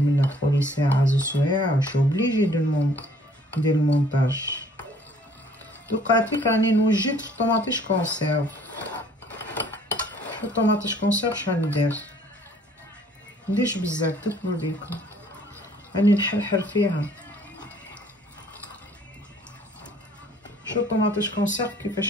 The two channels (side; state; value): both; normal; correlation 0.58